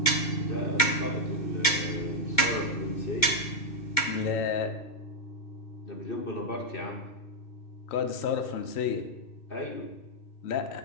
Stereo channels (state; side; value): late; right; 2.1 ms